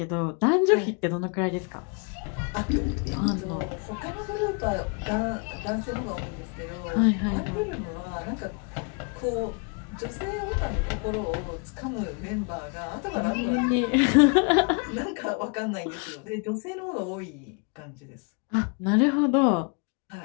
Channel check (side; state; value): right; quieter; 35.5 dB